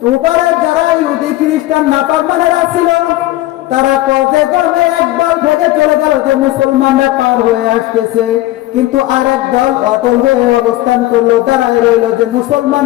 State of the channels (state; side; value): quieter; right; 16.6 dB